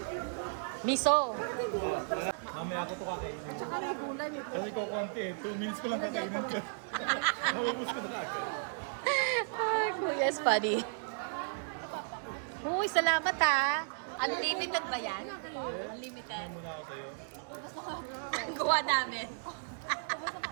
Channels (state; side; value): silent; left; digital silence